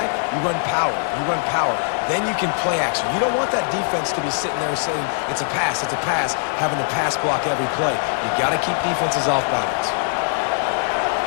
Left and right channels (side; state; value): right; silent; digital silence